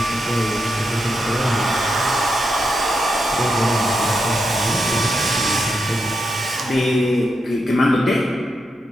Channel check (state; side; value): normal; both; correlation 0.85